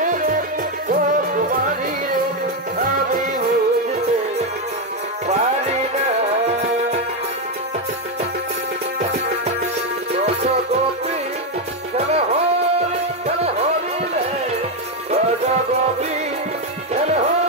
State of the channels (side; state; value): both; normal; correlation 0.06